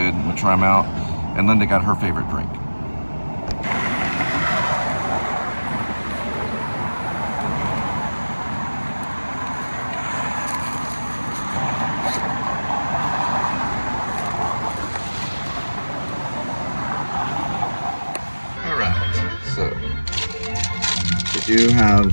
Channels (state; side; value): inverted; both; correlation -1.00